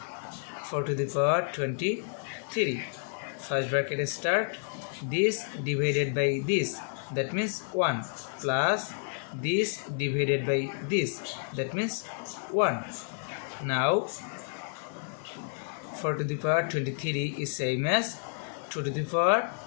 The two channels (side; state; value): right; silent; 58 dB below the other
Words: 4 to the power 23. First bracket start, this divided by this, that means 1, plus this divided by this, that means 1. Now 4 to the power 23 is same as 2 to the power